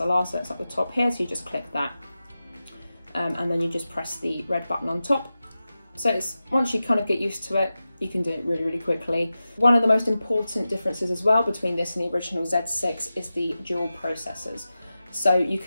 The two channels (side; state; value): both; inverted; correlation -0.93